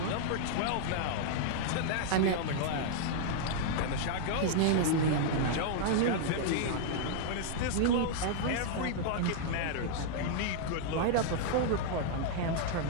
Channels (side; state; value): both; different; correlation -0.01